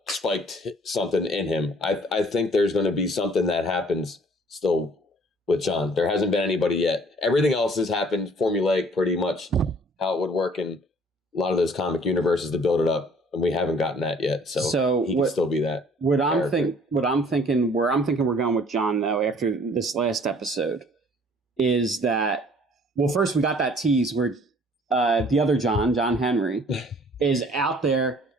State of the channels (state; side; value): normal; both; correlation 0.55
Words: spiked something in him. I think there's going to be something that happens still with John. There hasn't been anybody yet. Everything else has happened formulaic, pretty much how it would work in a lot of those comic universes to build it up, and we haven't gotten that yet. So he can still be that. Where I'm thinking we're going with John though after this last episode is that, well, first we got that tease where the other John Henry, is out there